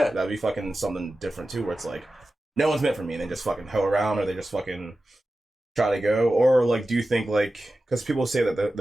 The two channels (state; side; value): normal; both; correlation 0.94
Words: that'd be fucking something different too, where it's like no one's meant for me and they just fucking hoe around or they just fucking try to go, or like do you think like because people say that